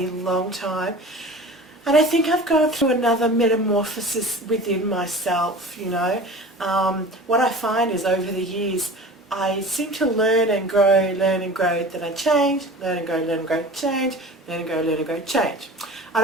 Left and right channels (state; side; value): normal; both; correlation 0.38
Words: long time, and I think I've gone through another metamorphosis within myself, What I find is over the years I seem to learn and grow, then I change, learn and grow, change, learn and grow, change. I